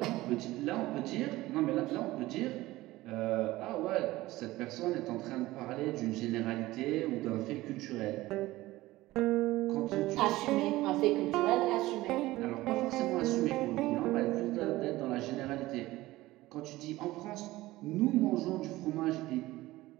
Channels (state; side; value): quieter; left; 17.9 dB